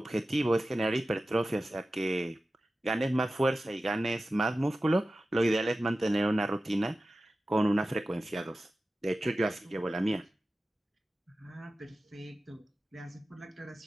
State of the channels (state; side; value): normal; both; correlation 0.94